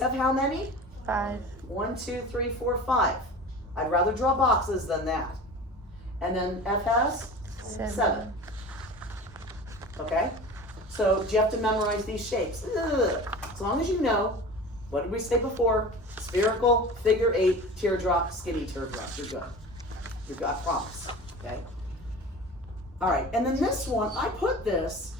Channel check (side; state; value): both; normal; correlation 0.36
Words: how many? 5. 1, 2, 3, 4, 5. I'd rather draw boxes than that. And then F has? 7. Okay? So do you have to memorize these shapes? Ugh. As long as you know, what did we say before? Spherical, figure 8, teardrop, skinny teardrop. You're good. You're good, I promise. Okay? All right, and then this one, I put this